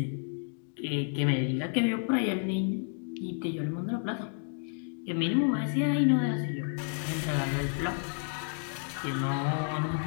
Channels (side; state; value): right; silent; 56 dB below the other